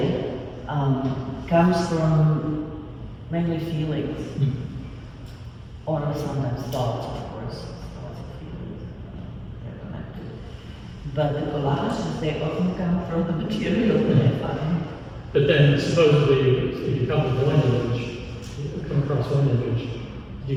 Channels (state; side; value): identical; both; correlation 1.00